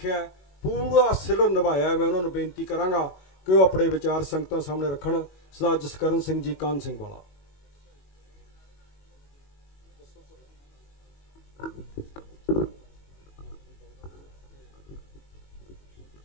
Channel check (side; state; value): right; late; 21 ms